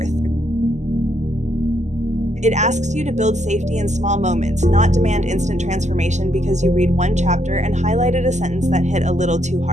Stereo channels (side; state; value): left; late; 0.34 ms